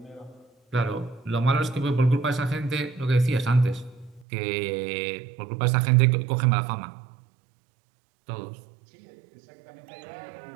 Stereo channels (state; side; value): drops out; left; at 4.2 s